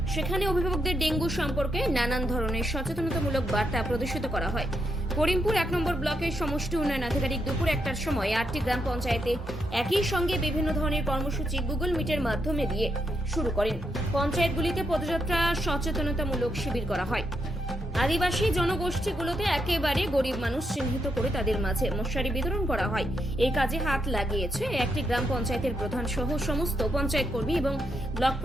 সেখানে অভিভাবকদের ডেঙ্গু সম্পর্কে নানান ধরনের সচেতনতামূলক বার্তা প্রদর্শিত করা হয়। করিমপুর ১ নম্বর ব্লকের সমষ্টি উন্নয়ন আধিকারিক দুপুর ১টার সময় ৮টি গ্রাম পঞ্চায়েতে একই সঙ্গে বিভিন্ন ধরনের কর্মসূচি গুগল মিটের মাধ্যমে দিয়ে শুরু করেন। পঞ্চায়েতগুলিতে পদযাত্রা, সচেতনতামূলক শিবির করা হয়। আদিবাসী জনগোষ্ঠীগুলোতে একেবারে গরিব মানুষ চিহ্নিত করে তাদের মাঝে মশারি বিতরণ করা হয়। এই কাজে হাত লাগিয়েছে একটি গ্রাম পঞ্চায়েতের প্রধান সহ সমস্ত পঞ্চায়েত কর্মী এবং ব্লক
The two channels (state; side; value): normal; both; correlation 0.81